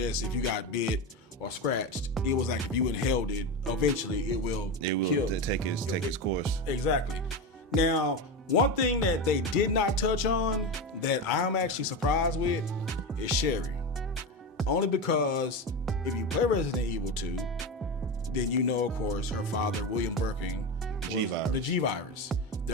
if you got bit or scratched. It was like if you inhaled it, eventually it will kill. Take its course. Exactly. Now, one thing that they did not touch on that I'm actually surprised with is Sherry. Only because if you play Resident Evil 2, then you know, of course, her father, William Birkin, was the G virus.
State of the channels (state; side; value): normal; both; correlation 0.19